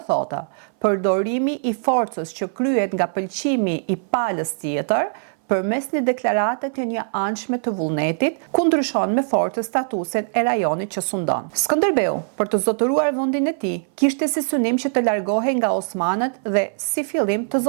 thotë përdorimi i forcës që kryhet nga pëlqimi i palës tjetër përmes një deklarate të një anshme të vullnetit, ku ndryshon me fortë statusin e rajonit që sundon. Skënderbeu, për të zotëruar vendin e tij, kishte si synim që të largohej nga osmanët dhe si fillim të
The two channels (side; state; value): left; silent; 60 dB below the other